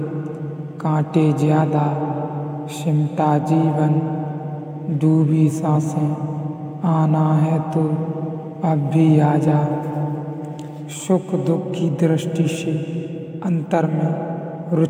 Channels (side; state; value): both; identical; correlation 1.00